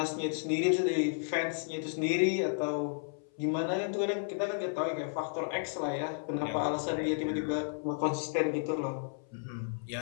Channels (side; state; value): right; silent; 56 dB below the other